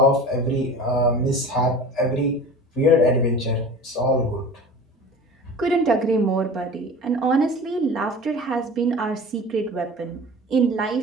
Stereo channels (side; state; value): both; normal; correlation 0.37